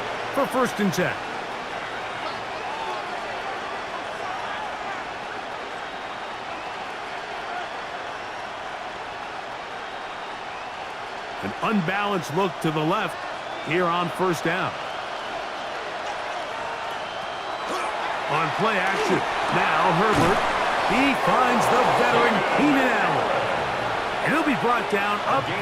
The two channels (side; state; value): both; identical; correlation 1.00